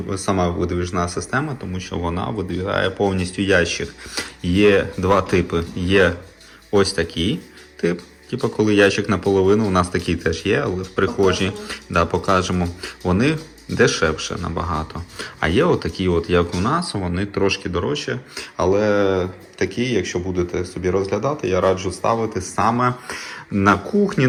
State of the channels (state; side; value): identical; both; correlation 1.00